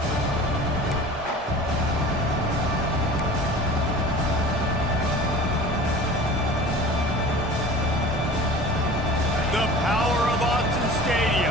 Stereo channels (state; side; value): normal; both; correlation 0.40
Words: The power of Autzen